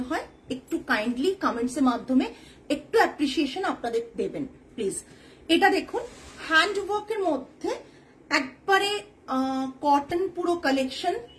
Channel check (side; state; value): both; identical; correlation 1.00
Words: হয়, একটু কাইন্ডলি কমেন্টস এর মাধ্যমে একটু অ্যাপ্রিসিয়েশন আপনাদের দেবেন প্লিজ। এটা দেখুন, হ্যান্ড ওয়ার্কের মধ্যে একবারে কটন পুরো কালেকশন,